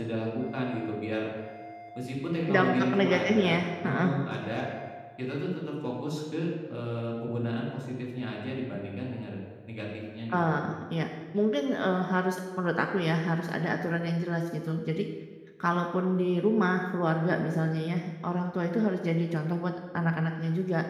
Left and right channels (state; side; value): identical; both; correlation 1.00